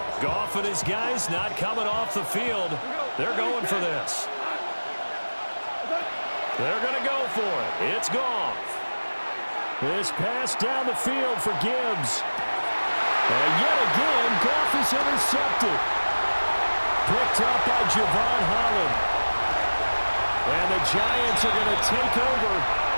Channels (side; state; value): both; inverted; correlation -1.00